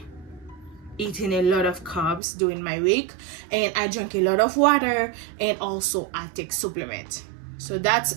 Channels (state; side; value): drops out; left; at 2.2 s